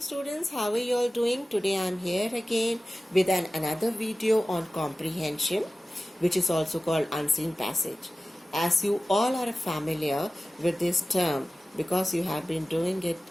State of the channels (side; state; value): both; normal; correlation 0.96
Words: students, how are you all doing? Today I am here again with another video on comprehension, which is also called unseen passage. As you all are familiar with this term because you have been doing it